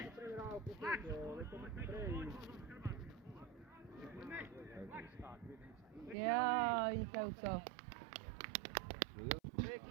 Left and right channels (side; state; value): left; drops out; at 6.2 s